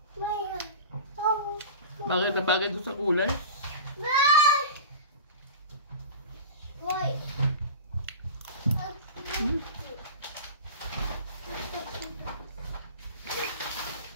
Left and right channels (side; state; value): both; inverted; correlation -0.33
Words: Bagay na bagay doon sa kulay.